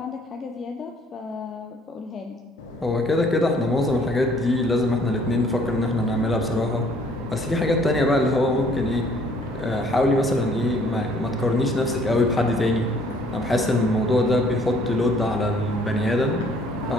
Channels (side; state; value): both; normal; correlation 0.59